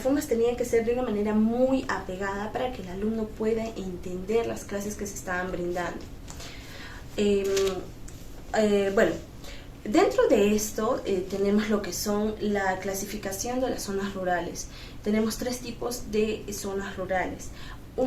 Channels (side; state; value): both; identical; correlation 1.00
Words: tenía que ser de una manera muy apegada para que el alumno pueda entender las clases que se estaban brindando. Bueno, dentro de esto tenemos lo que son la clasificación de las zonas rurales. Tenemos 3 tipos de zonas rurales.